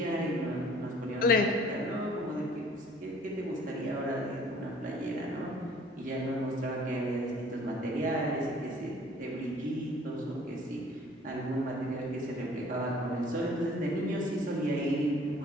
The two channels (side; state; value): both; normal; correlation 0.54